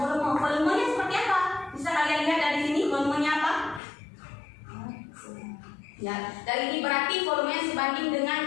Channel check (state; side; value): drops out; right; at 3.8 s